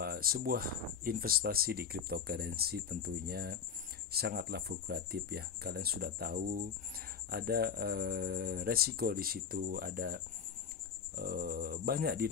sebuah investasi di cryptocurrency tentunya sangatlah fluktuatif ya. Kalian sudah tahu ada resiko di situ, ada banyak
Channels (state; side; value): quieter; right; 6.9 dB